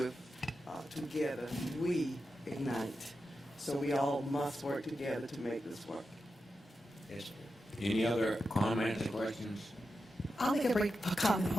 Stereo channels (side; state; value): both; normal; correlation 0.89